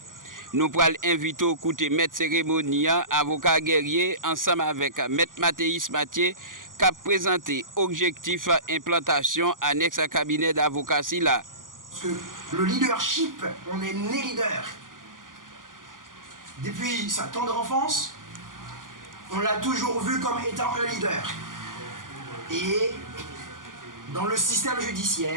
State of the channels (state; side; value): late; left; 0.89 ms